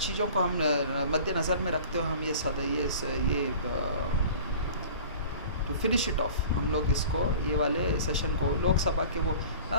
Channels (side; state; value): both; inverted; correlation -0.42